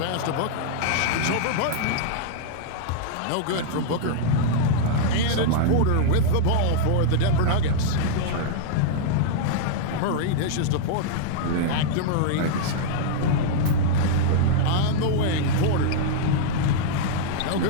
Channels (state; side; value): different; both; correlation -0.01